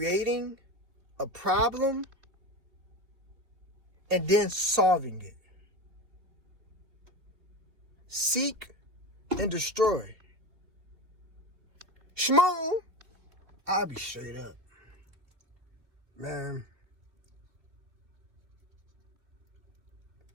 a problem and then solving it. Seek and destroy. Shmoon, I'll be straight up. Man,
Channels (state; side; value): late; left; 2.6 ms